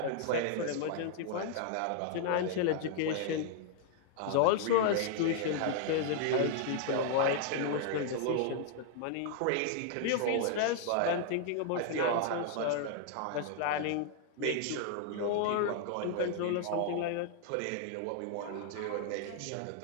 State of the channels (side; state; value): both; different; correlation 0.00